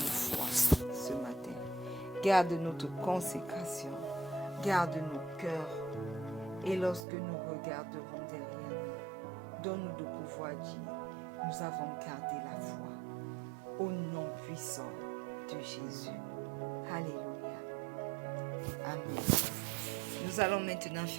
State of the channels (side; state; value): left; drops out; at 7.1 s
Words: ce matin. Garde notre consécration. Garde nos cœurs. Et lorsque nous regarderons derrière nous, donne-nous de pouvoir dire, nous avons gardé la foi. Au nom puissant de Jésus. Alléluia. Amen. Nous allons maintenant